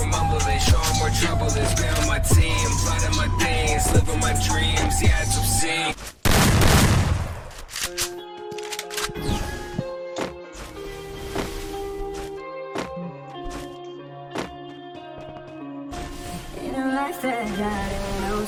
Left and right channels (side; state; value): both; identical; correlation 1.00